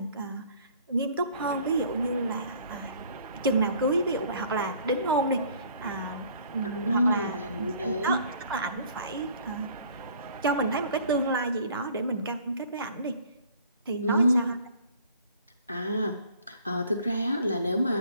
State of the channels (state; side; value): inverted; both; correlation -0.54